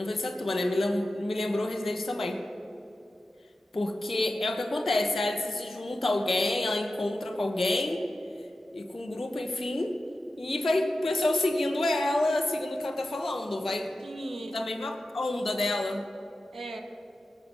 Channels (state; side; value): normal; both; correlation 0.93